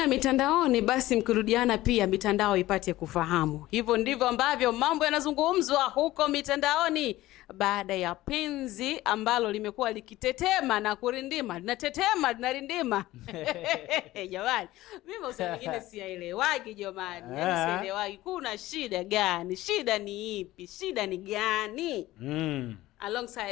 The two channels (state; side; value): quieter; right; 16.6 dB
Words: mitandaoni basi mkirudiana pia mitandao ipate kufahamu. Hivyo ndivyo ambavyo mambo yanazungumzwa huko mitandaoni baada ya penzi ambalo limekuwa likitetema na kurindima. Linatetema, linarindima. Jamani, mimi usema wengine siyaelewagi jamani. Yaani sielewagi kuna shida gani? Shida ni ipi? Shida ni gani?